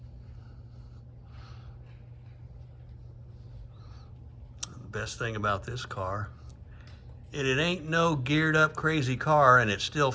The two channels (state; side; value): identical; both; correlation 1.00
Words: best thing about this car, it ain't no geared up crazy car, and it's still